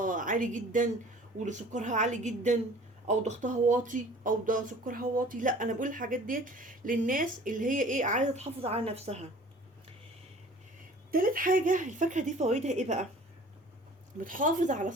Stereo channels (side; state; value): both; normal; correlation 0.48